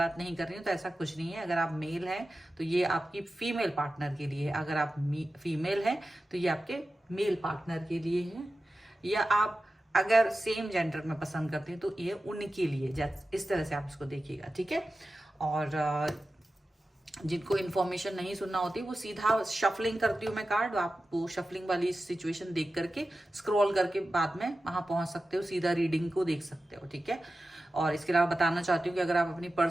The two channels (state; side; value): normal; both; correlation 0.94